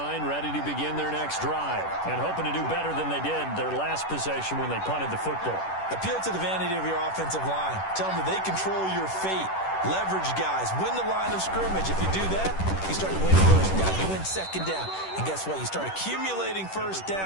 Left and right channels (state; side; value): late; right; 10 ms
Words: ready to begin their next drive, and hoping to do better than they did their last possession when they punted the football. Appeal to the vanity of your offensive line. Tell them that they control your fate. Leverage guys. Win the line of scrimmage. If you do that, you start to win 1st down. You win 2nd down. And guess what? You start accumulating 1st